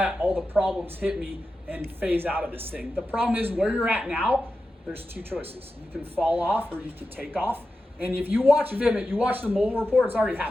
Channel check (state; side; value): normal; both; correlation 0.91